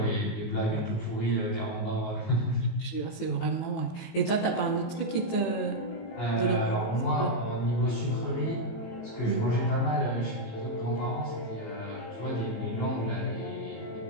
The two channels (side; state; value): right; late; 19 ms